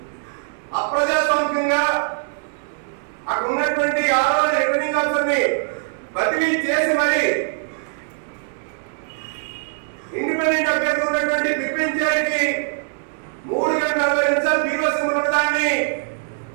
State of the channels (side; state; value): left; silent; digital silence